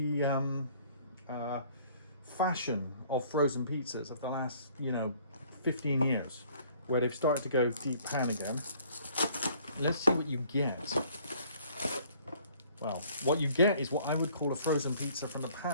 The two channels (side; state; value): both; inverted; correlation -0.57